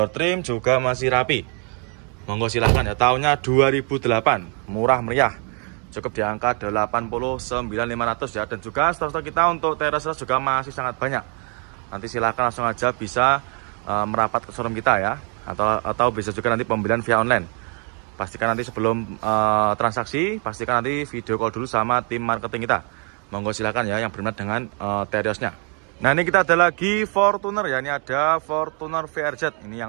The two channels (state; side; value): quieter; left; 37.4 dB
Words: trim juga masih rapi. Monggo silahkan ya. Tahunnya 2008, murah meriah, cukup di angka 89.500 ya. Dan juga stok-stok kita untuk Terios juga masih sangat banyak. Nanti silahkan langsung aja bisa merapat ke showroom kita ya, atau bisa juga nanti pembelian via online. Pastikan nanti sebelum transaksi, pastikan nanti video call dulu sama tim marketing kita. Monggo silahkan ya yang berminat dengan Teriosnya. Nah, ini kita ada lagi Fortuner ya. Ini ada Fortuner VRZ. Ini